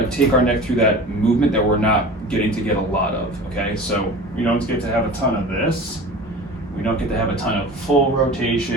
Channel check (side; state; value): both; normal; correlation 0.37